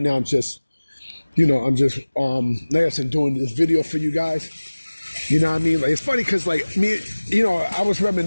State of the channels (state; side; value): inverted; both; correlation -1.00